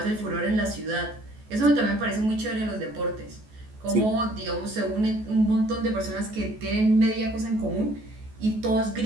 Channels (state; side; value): late; left; 14 ms